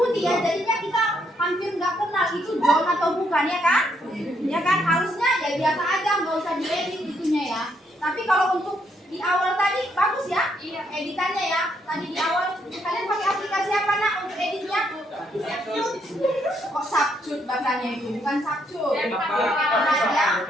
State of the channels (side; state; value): both; normal; correlation 0.74